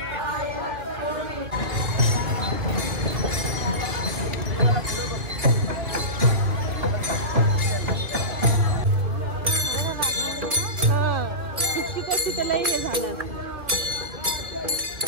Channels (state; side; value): late; left; 2.7 ms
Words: त्याला हे झालं.